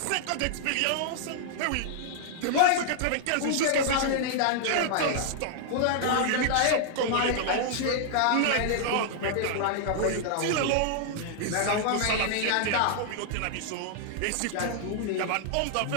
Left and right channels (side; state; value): both; different; correlation -0.01